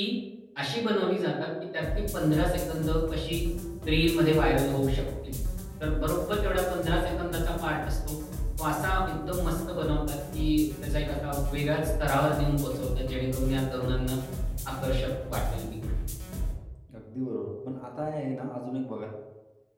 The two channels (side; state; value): both; identical; correlation 1.00